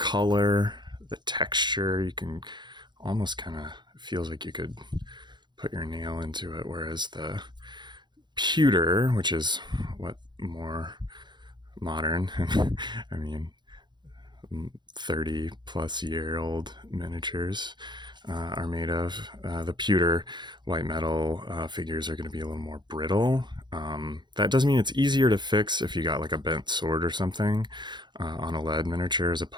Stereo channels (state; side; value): late; left; 0.22 ms